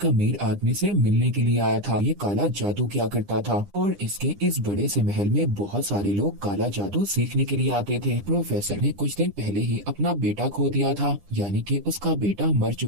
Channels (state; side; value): late; left; 9.9 ms